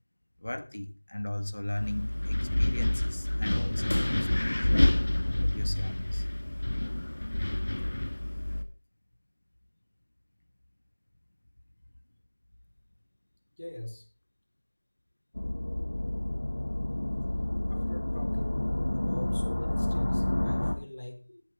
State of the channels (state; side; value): inverted; both; correlation -1.00